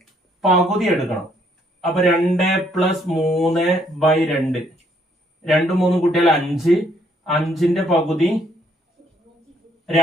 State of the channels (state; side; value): normal; both; correlation 0.68